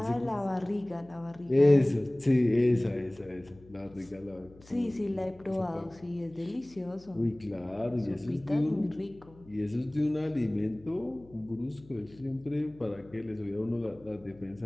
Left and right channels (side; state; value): left; noise; hum, 24 dB below the sound